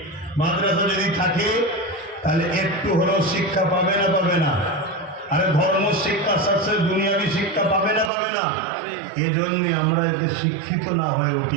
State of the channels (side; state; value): left; drops out; at 8.1 s